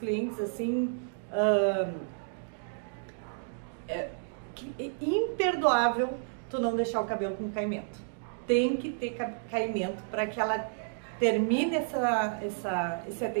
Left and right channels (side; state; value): left; silent; digital silence